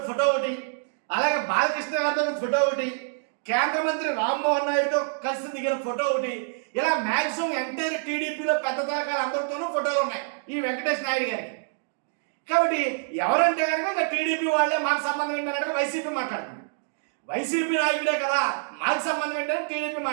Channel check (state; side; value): silent; left; digital silence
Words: ఫోటో ఒకటి, అలాగే బాలకృష్ణ గారితో ఫోటో ఒకటి, కేంద్ర మంత్రి రామ్మోహన్ నాయుడుతో కలిసి దిగిన ఫోటో ఒకటి, ఇలా మ్యాక్సిమం ఎంటైర్ టీడీపీలో పెద్ద తరకాల అందరితోనూ ఫోటోలు ఉన్నాయి ఈ వెంకటేష్ నాయుడు గారికి. కాబట్టి ఎవరంటే కనుక ఇంకా టీడీపీ వాళ్ళే మాకు సంబంధం ఏంటంటే వైసీపీ మాట్లాడుతుంది. వైసీపీ నాయకుడే కదా మాకు సంబంధం ఏంటంటే టీడీపీ